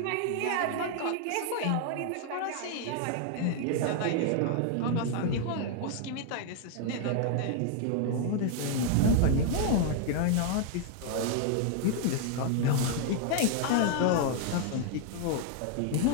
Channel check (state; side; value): different; both; correlation 0.00